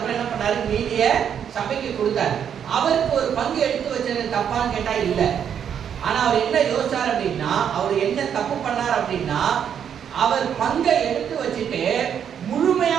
என்ன பண்ணாரு? மீதிய சபைக்கு கொடுத்தாரு. அவருக்கு ஒரு பங்கு எடுத்து வச்சது தப்பான்னு கேட்டா இல்ல. ஆனா அவர் என்ன யோசிச்சார் அப்படின்னா, அவர் என்ன தப்பு பண்ணார் அப்படின்னா, அவர் பங்கை எடுத்து வச்சுட்டு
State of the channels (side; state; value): left; quieter; 8.4 dB